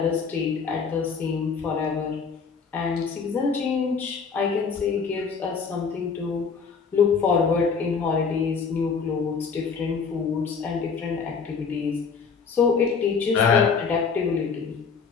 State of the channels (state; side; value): quieter; right; 5.6 dB